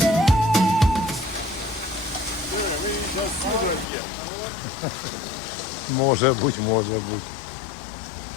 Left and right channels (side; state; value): right; drops out; at 3.9 s